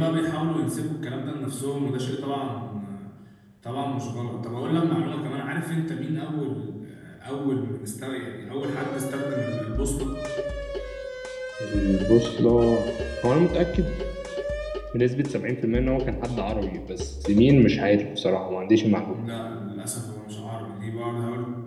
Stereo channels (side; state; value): both; identical; correlation 1.00